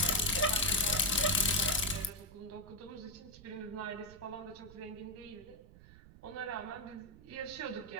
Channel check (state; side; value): noise; right; rumble, 19 dB below the sound